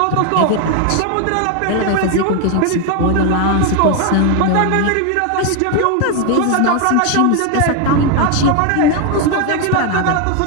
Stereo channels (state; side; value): different; both; correlation 0.01